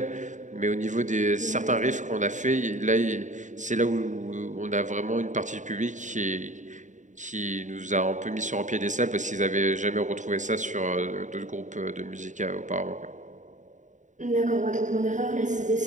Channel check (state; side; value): late; left; 0.36 ms